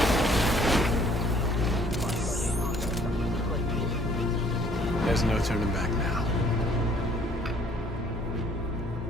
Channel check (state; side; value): normal; both; correlation 0.60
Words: There's no turning back now.